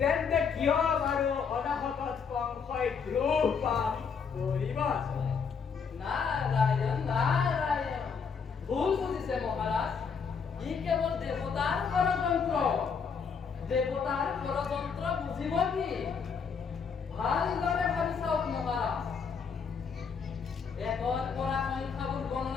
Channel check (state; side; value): quieter; right; 6.1 dB